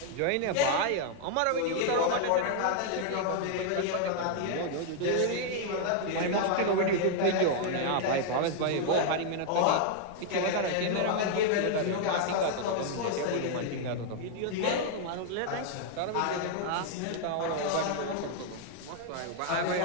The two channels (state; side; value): different; both; correlation 0.00